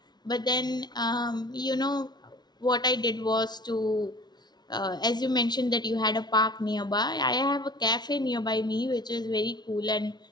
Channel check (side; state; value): right; late; 0.20 ms